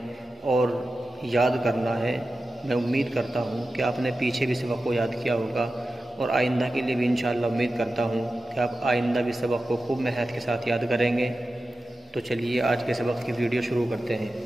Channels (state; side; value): normal; both; correlation 0.93